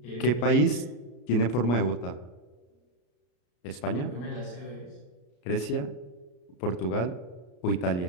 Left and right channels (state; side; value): late; right; 33 ms